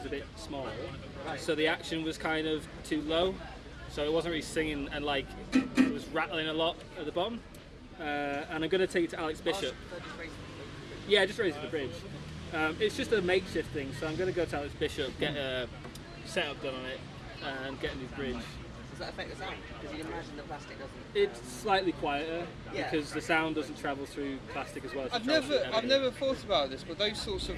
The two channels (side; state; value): both; identical; correlation 1.00